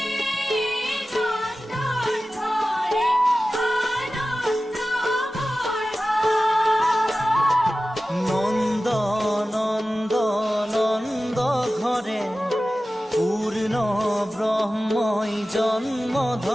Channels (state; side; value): normal; both; correlation 0.95